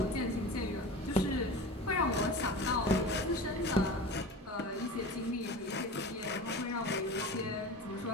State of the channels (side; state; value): both; normal; correlation 0.32